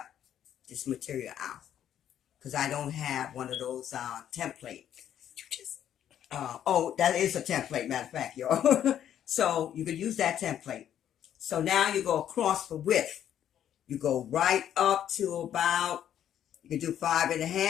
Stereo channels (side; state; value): right; quieter; 10.3 dB